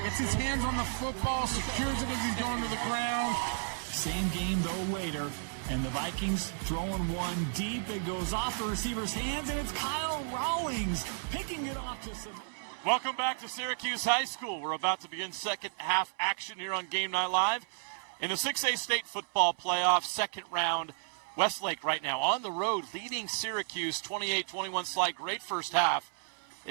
Gets his hands on the football, secures it as he's going to the ground. Same game, though, later. And the Vikings throwing one deep. It goes off the receiver's hands, and it's Kyle Rawlings picking it off to some. Welcome back to Syracuse High School. We're about to begin second half action here on Game Night Live. In the 6A state football playoff, second round, Westlake right now on the road, leading Syracuse 28-21 slide. Great first half.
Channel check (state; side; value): silent; left; 56 dB below the other